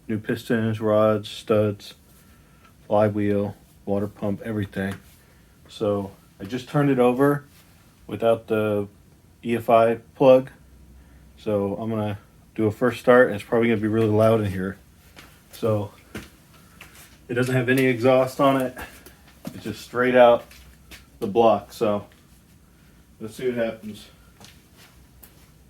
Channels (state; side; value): identical; both; correlation 1.00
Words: New pistons, rods, studs, flywheel, water pump, everything. So I just turned it over without the EFI plug. So I'm going to do a first start, and it's probably going to be really loud in here. So it doesn't have any exhaust on it. It's just straight out the block. So let's see what happens.